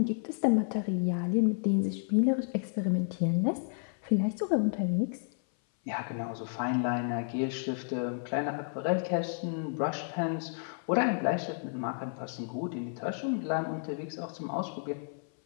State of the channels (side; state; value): right; silent; 57 dB below the other